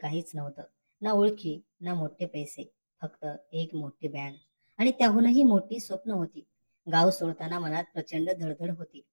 नव्हतं, ना ओळखी ना मोठे पैसे, फक्त एक मोठी बॅग आणि त्याहूनही मोठी स्वप्न होती. गाव सोडताना मनात प्रचंड धडधड होती.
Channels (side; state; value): both; inverted; correlation -1.00